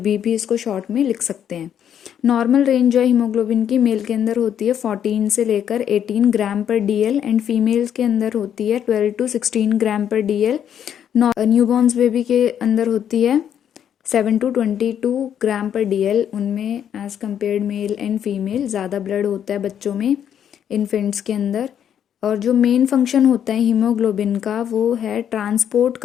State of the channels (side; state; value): right; quieter; 9.3 dB